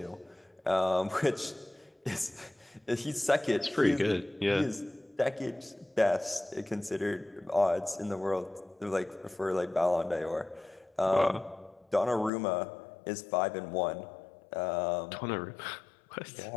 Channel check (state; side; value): drops out; right; at 12.3 s